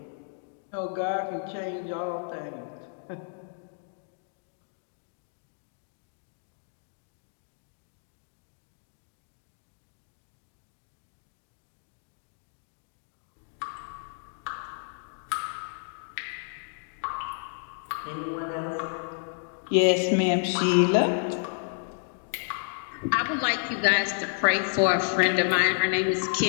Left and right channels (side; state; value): right; silent; digital silence